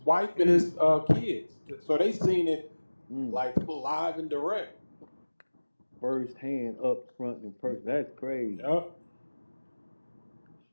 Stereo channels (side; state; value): both; inverted; correlation -1.00